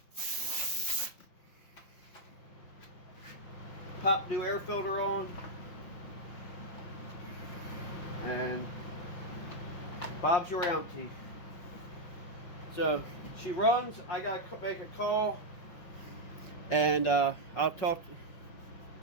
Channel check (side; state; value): right; late; 5.8 ms